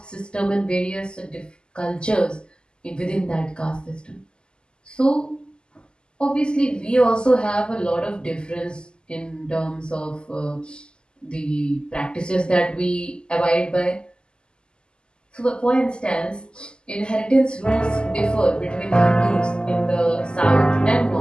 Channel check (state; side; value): late; right; 0.048 ms